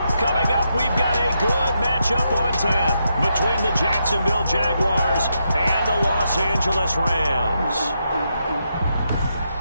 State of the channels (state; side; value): inverted; both; correlation -0.82